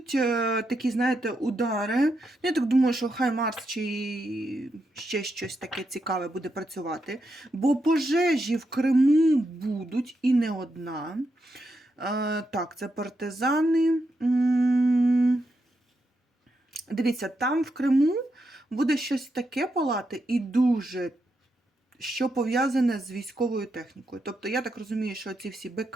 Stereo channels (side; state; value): both; normal; correlation 0.83